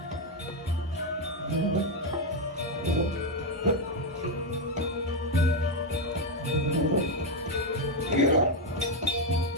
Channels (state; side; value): normal; both; correlation 0.05